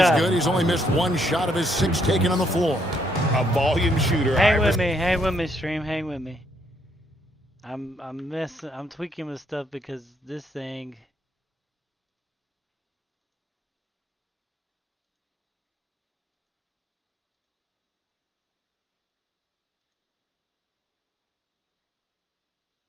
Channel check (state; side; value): normal; both; correlation 0.72